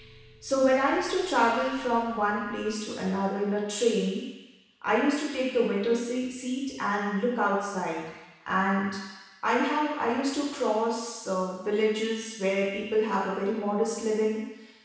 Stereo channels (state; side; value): identical; both; correlation 1.00